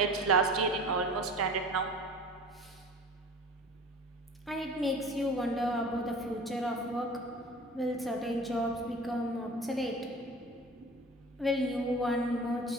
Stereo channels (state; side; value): normal; both; correlation 0.39